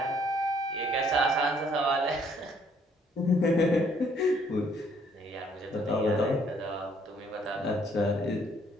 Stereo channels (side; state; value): both; normal; correlation 0.64